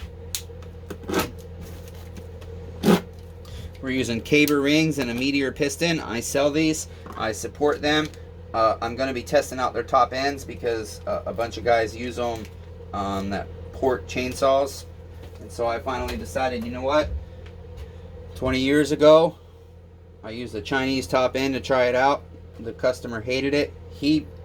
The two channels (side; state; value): both; identical; correlation 1.00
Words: We're using caber rings and a meteor piston. I sell these. I support them. I'm going to be testing out their top ends because a bunch of guys use them that port chainsaws. And so I finally decided, you know what? 20 years ago, I used the Chinese top end to try it out. The customer hated it. He